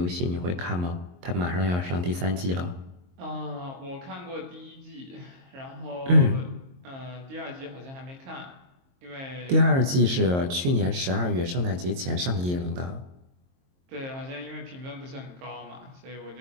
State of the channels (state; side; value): late; left; 22 ms